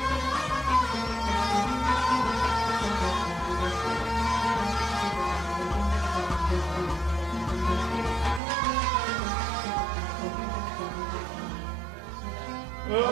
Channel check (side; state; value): left; drops out; at 8.4 s